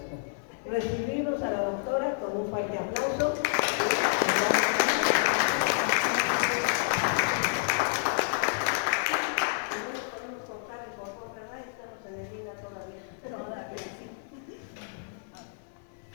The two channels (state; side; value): silent; right; 58 dB below the other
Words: Recibimos a la doctora con un fuerte aplauso.